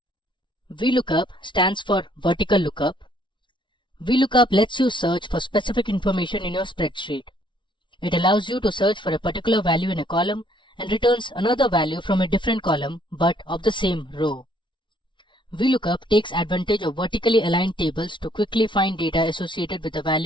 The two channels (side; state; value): right; late; 0.24 ms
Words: Vlookup stands for vertical lookup. Vlookup lets you search for specific information in your spreadsheet. It allows you to search for a particular value in a column and returns another value from a different column but of the same row. Vlookup takes advantage of vertically aligned tables to quickly find data associated with the